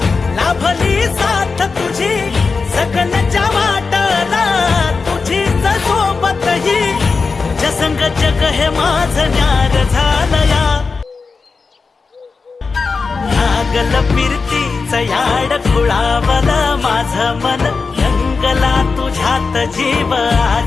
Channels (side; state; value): right; quieter; 4.6 dB